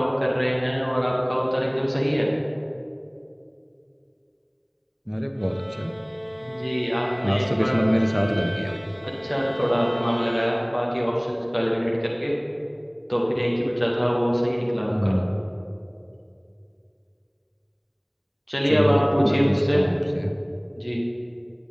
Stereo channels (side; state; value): both; identical; correlation 1.00